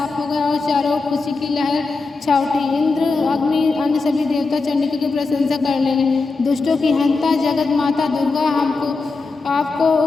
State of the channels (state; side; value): quieter; right; 3.9 dB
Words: हो गया और चारों ओर खुशी की लहर छा उठी। इंद्र, अग्नि, अन्य सभी देवता चंडिका की प्रशंसा करने लगे। दुष्टों की हंता जगत माता दुर्गा, आपको